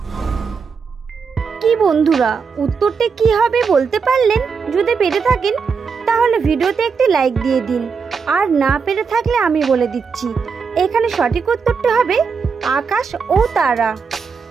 কি বন্ধুরা, উত্তরটি কি হবে বলতে পারলেন? যদি পেরে থাকেন তাহলে ভিডিওতে একটি লাইক দিয়ে দিন। আর না পেরে থাকলে আমি বলে দিচ্ছি, এখানে সঠিক উত্তরটি হবে আকাশ ও তারা।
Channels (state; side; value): quieter; left; 5.5 dB